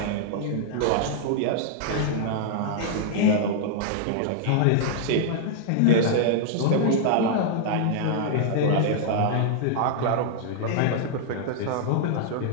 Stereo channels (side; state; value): both; different; correlation -0.01